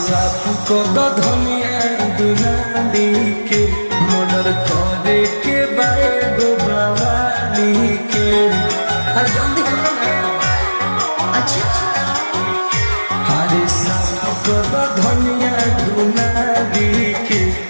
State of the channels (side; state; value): both; inverted; correlation -1.00